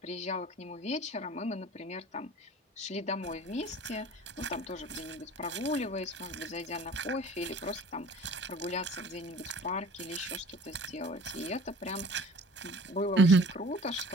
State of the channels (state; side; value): normal; both; correlation 0.45